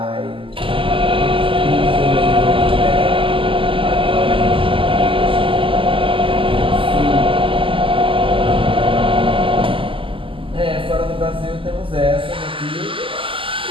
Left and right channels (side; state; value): left; late; 0.25 ms